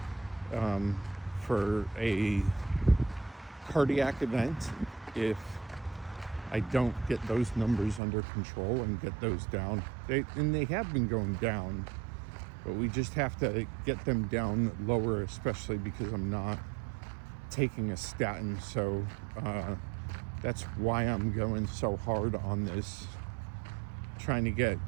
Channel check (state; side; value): drops out; left; at 8.0 s